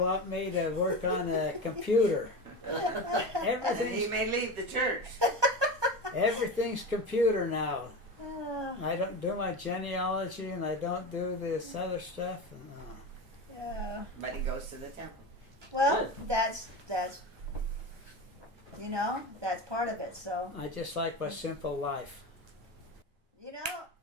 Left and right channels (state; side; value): late; left; 1.0 ms